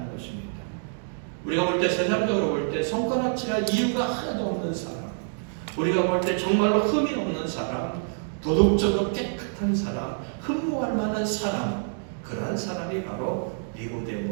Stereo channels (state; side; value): silent; left; digital silence